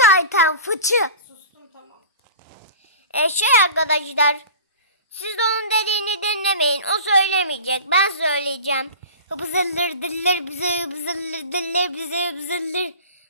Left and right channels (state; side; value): inverted; both; correlation -0.37